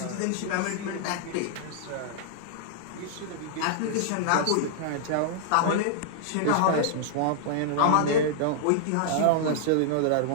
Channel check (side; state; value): both; different; correlation -0.01